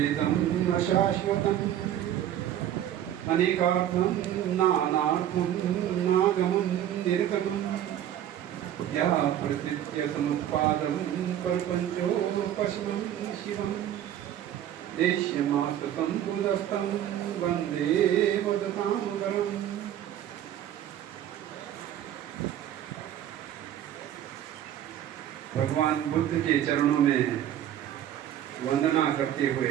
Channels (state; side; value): quieter; left; 11.2 dB